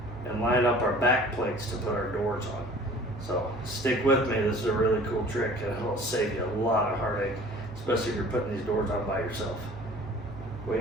and line up our back plates to put our doors on. So stick with me, this is a really cool trick and it'll save you a lot of heartache, especially if you're putting these doors on by yourself. Wait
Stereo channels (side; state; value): both; normal; correlation 0.48